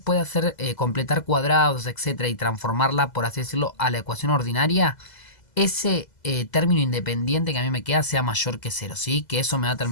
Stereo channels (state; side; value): late; right; 2.0 ms